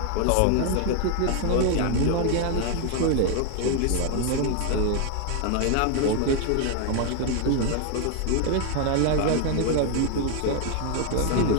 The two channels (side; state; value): both; different; correlation 0.01